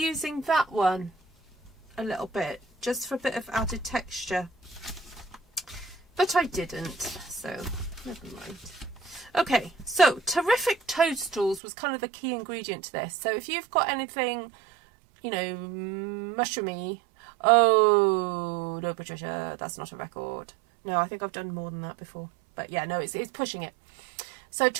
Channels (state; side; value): drops out; left; at 11.6 s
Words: that one a little bit, just for a bit of added texture. But I didn't, so never mind. Okay, so Terrific Toadstools was kind of the key ingredient to this. So if you've got anything, you know, mushroomy. Oh, no, Patricia, that's not a record. No, I think I've done more than that before. But yeah, no, it's pushing it. So